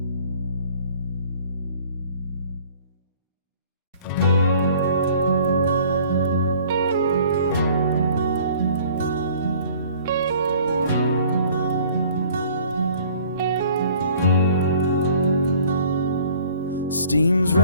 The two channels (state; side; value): inverted; both; correlation -0.53